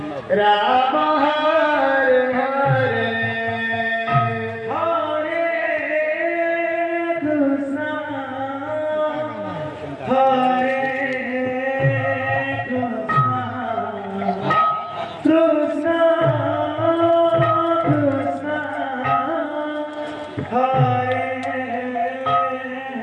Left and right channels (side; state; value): both; identical; correlation 1.00